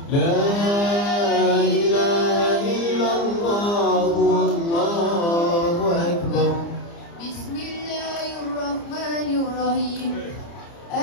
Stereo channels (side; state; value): right; late; 30 ms